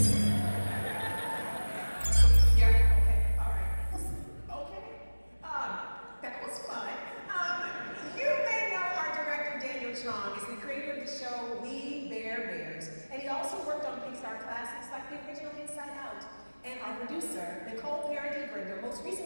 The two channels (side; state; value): both; inverted; correlation -1.00